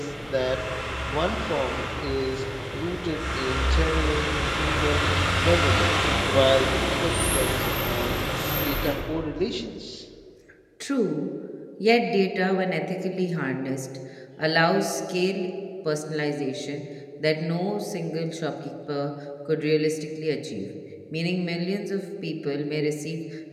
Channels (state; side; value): identical; both; correlation 1.00